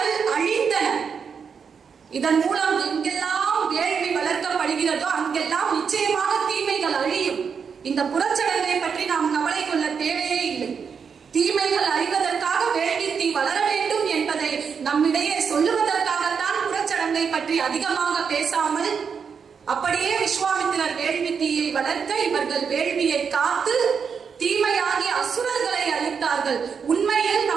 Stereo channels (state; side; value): quieter; left; 6.3 dB